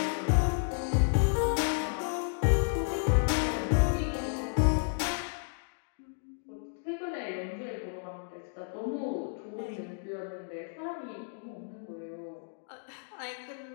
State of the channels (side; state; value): right; silent; digital silence